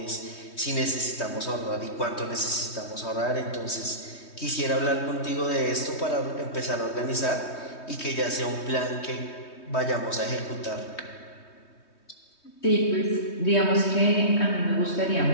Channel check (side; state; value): right; late; 3.2 ms